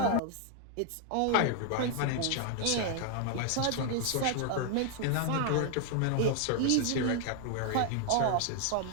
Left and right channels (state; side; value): different; both; correlation 0.00